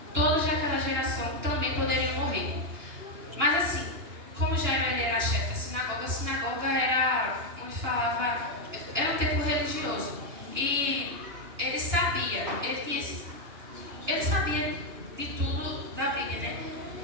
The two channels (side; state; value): left; late; 2.9 ms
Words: todos daquela geração também poderiam morrer. Mas assim, como Jairo ele era chefe da sinagoga, a sinagoga era onde falava, era um templo religioso. E ele sabia de tudo da Bíblia, né?